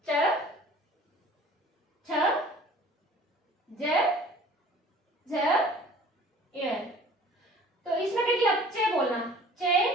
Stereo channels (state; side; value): normal; both; correlation 0.48